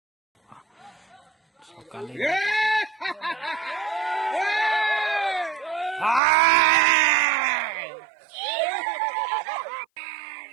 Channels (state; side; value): drops out; left; at 6.2 s